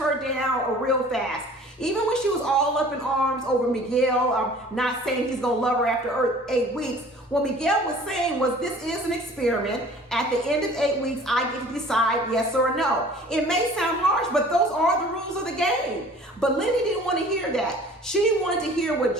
down real fast. Even when she was all up in arms over Miguel, not saying he's gonna love her after 8 weeks, What Miguel was saying was this is an experiment. At the end of 8 weeks, I get to decide yes or no. It may sound harsh, but those are the rules of the game. But Lindy didn't want to hear that. She wanted to hear what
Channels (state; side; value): normal; both; correlation 0.48